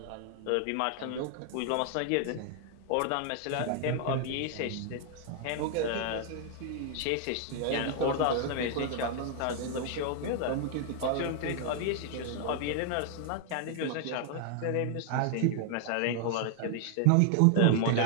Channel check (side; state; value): both; different; correlation 0.00